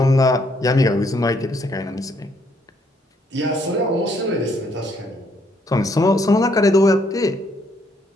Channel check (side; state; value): both; normal; correlation 0.70